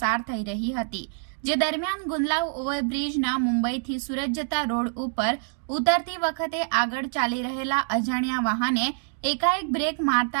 થઈ રહી હતી, જે દરમિયાન ગુંદલાવ ઓવરબ્રિજના મુંબઈથી સુરત જતા રોડ ઉપર ઉતરતી વખતે આગળ ચાલી રહેલા અજાણ્યા વાહને એકાએક બ્રેક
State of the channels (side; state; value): left; silent; digital silence